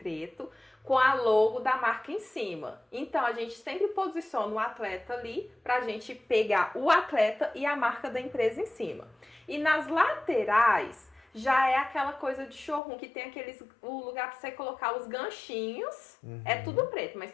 com a logo da marca em cima. Então, a gente sempre posiciona o atleta ali pra gente pegar o atleta e a marca da empresa em cima. E nas laterais, já é aquela coisa de showroom, que tem o lugar pra você colocar os ganchinhos. É tudo preto, mas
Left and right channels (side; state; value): right; drops out; at 12.8 s